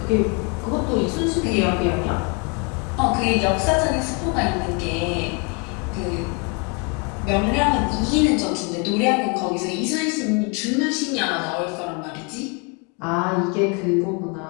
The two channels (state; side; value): quieter; right; 33.3 dB